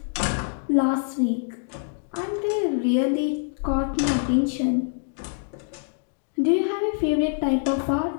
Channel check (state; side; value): silent; right; 62 dB below the other